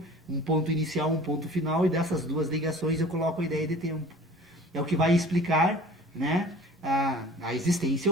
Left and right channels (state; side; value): normal; both; correlation 0.45